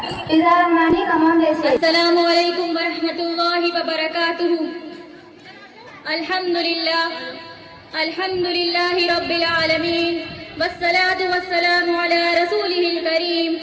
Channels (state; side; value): identical; both; correlation 1.00